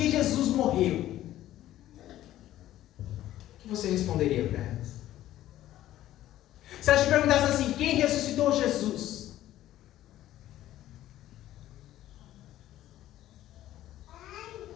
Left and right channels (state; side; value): quieter; right; 13.6 dB